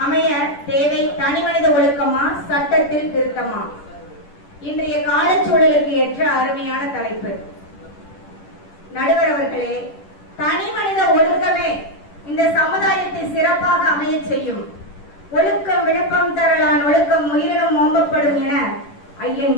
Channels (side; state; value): right; late; 10 ms